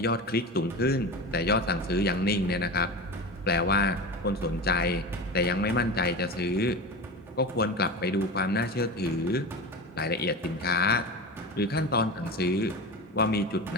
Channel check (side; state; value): both; normal; correlation 0.26